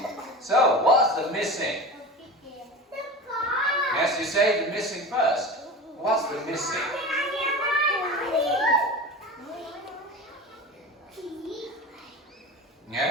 So, what's the missing? Yes, you say the missing first. What's the missing?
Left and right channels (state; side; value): normal; both; correlation 0.31